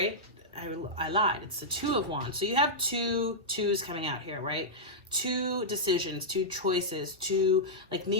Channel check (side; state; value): both; normal; correlation -0.09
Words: I lied. It's the Two of Wands. So you have two twos coming out here, right? Two decisions, two choices, two, like,